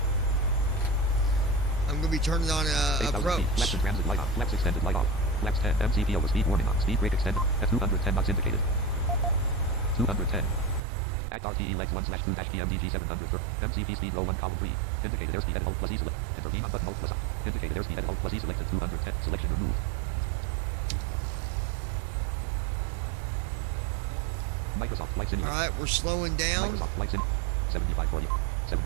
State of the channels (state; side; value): drops out; left; at 10.8 s